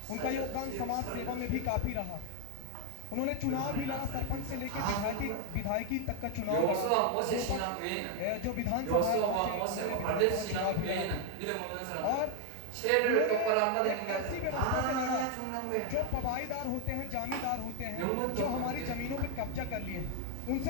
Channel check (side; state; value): both; different; correlation 0.00